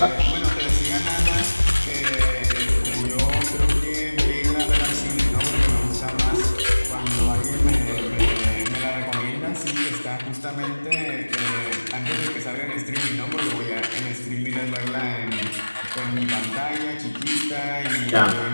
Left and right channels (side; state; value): both; inverted; correlation -1.00